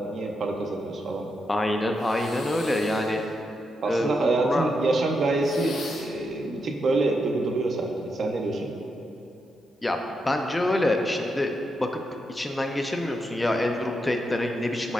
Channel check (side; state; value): both; normal; correlation 0.83